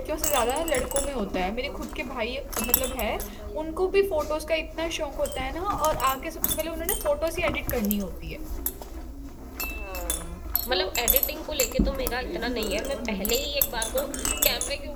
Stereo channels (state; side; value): identical; both; correlation 1.00